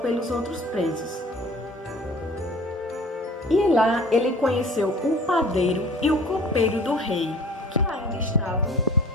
pelos outros presos. E lá ele conheceu o padeiro e o copeiro do rei, que ainda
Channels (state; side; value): normal; both; correlation 0.47